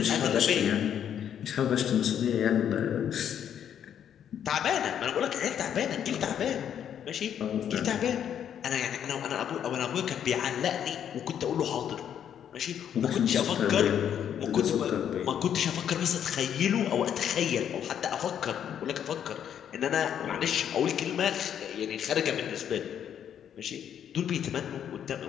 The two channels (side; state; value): right; quieter; 9.2 dB